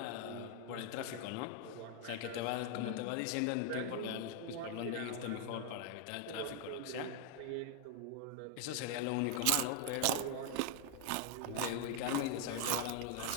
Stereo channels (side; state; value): both; different; correlation 0.00